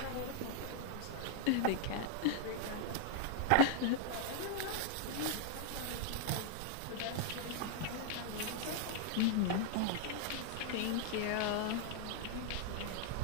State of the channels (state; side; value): different; both; correlation 0.00